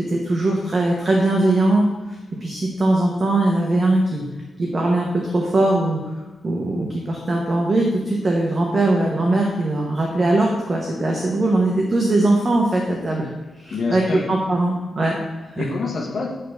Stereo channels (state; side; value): normal; both; correlation 0.89